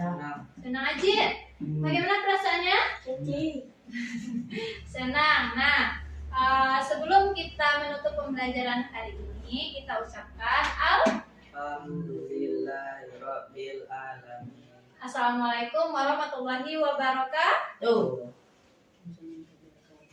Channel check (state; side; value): identical; both; correlation 1.00